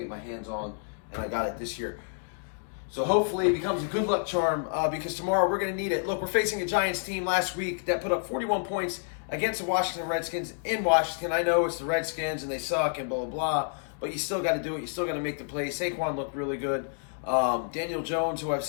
get my hands on, and I got it this year. So hopefully it becomes a good luck charm because tomorrow we're going to need it. Look, we're facing a Giants team last week that put up 41 points against the Washington Redskins in Washington. I know it's the Redskins and they suck and blah, blah, blah, but you still got to do it. You still got to make the plays. Saquon looked really good. Daniel Jones, who I've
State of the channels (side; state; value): right; silent; digital silence